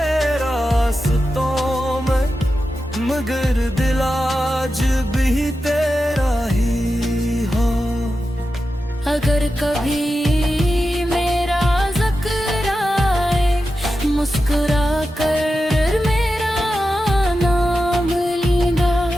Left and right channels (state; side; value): normal; both; correlation 0.91